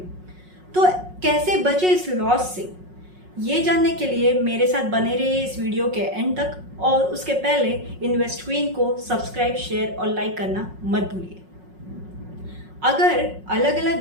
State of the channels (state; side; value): late; left; 5.5 ms